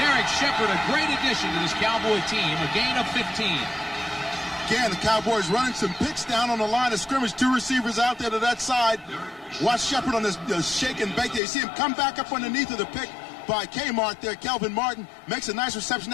Shepard, a great addition to this Cowboy team, a gain of 15. Again, the Cowboys running some picks down on the line of scrimmage. Two receivers out there to that side. Watch Shepard on this shake and bake there. You see him come back up underneath of the pick by Kmart there. Kelvin Martin makes a nice reception.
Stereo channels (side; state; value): right; drops out; at 11.4 s